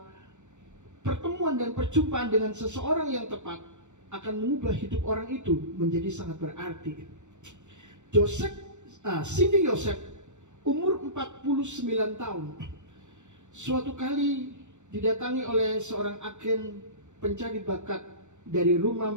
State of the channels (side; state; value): left; late; 0.84 ms